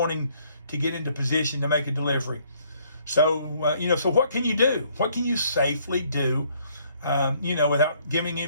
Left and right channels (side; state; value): both; inverted; correlation -0.65